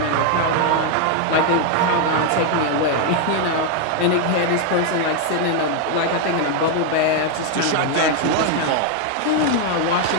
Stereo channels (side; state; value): both; different; correlation 0.01